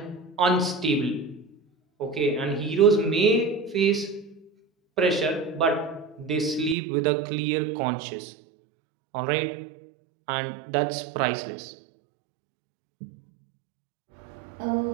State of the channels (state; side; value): drops out; left; at 6.8 s